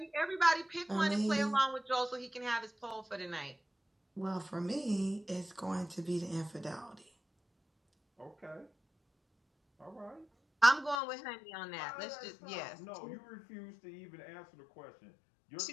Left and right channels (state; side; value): drops out; right; at 11.0 s